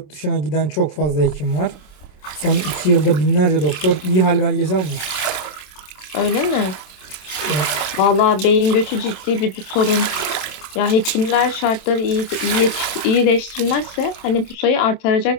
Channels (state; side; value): late; right; 27 ms